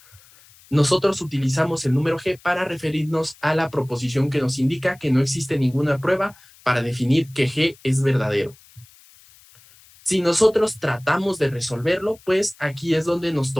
nosotros utilizamos el número G para referirnos a la proposición que nos indica que no existe ninguna prueba para definir que G es verdadero. Si nosotros tratamos de resolverlo, pues aquí es donde nos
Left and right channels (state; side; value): noise; left; hiss, 26 dB below the sound